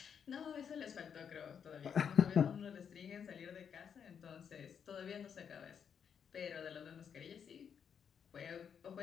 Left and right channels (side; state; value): right; quieter; 7.5 dB